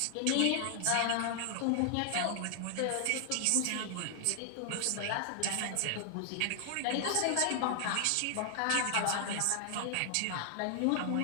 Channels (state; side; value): different; both; correlation 0.00